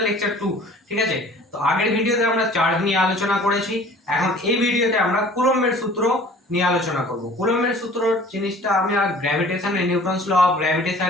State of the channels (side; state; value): both; normal; correlation 0.48